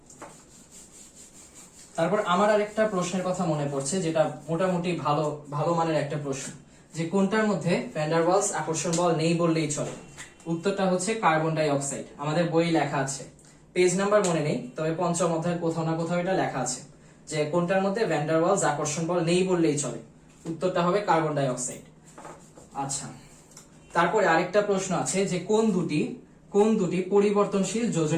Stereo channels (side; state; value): both; identical; correlation 1.00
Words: তারপর আমার আরেকটা প্রশ্নের কথা মনে পড়ছে, যেটা মোটামুটি ভালো মানের একটা প্রশ্ন, যে কোনটার মধ্যে ভ্যান ডার ওয়ালস আকর্ষণ বল নেই বললেই চলে। উত্তরটা হচ্ছে কার্বন ডাই অক্সাইড। আমাদের বই লেখা আছে, পেজ নাম্বার মনে নেই, তবে পঞ্চম অধ্যায়ের কোথাও না কোথাও এটা লেখা আছে যে কোনটার মধ্যে ভ্যান ডার ওয়ালস আকর্ষণ বল নেই বললেই চলে। উত্তরটা হবে কার্বন ডাই অক্সাইড। আচ্ছা, তারপরে আরেকটা প্রশ্ন আছে যে কোন দুটি পরিবর্তনশীল